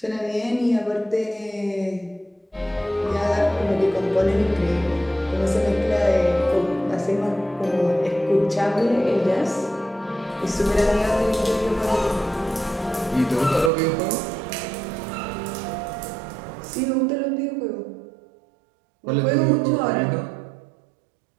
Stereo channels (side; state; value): left; drops out; at 13.7 s